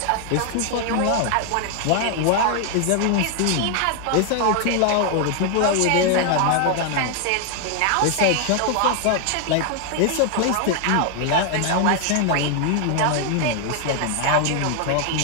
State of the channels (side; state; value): both; different; correlation 0.00